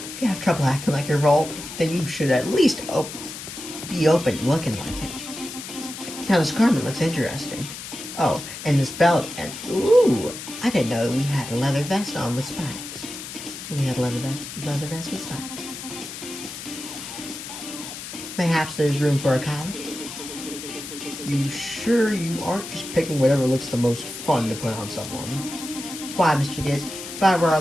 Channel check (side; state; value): left; noise; hiss, 10 dB below the sound